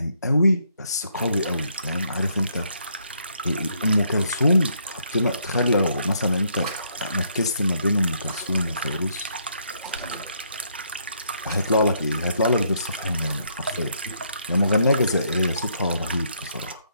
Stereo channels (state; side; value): inverted; both; correlation -0.72